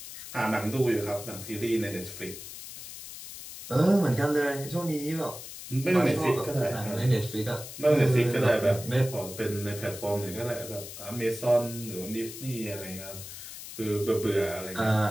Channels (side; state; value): left; noise; hiss, 12 dB below the sound